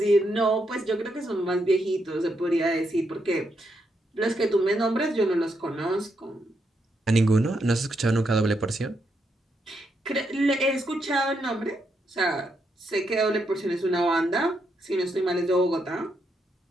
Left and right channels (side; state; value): both; normal; correlation 0.80